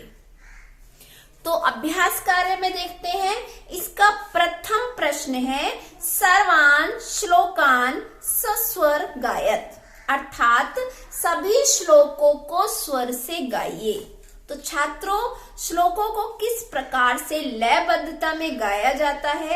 तो अभ्यास कार्य में देखते हैं, इसका प्रथम प्रश्न है सर्वान श्लोकान सस्वर गायत, अर्थात सभी श्लोकों को स्वर से गाइए। तो छात्रों, श्लोकों को किस प्रकार से लयबद्धता में गाया जाता है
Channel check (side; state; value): both; identical; correlation 1.00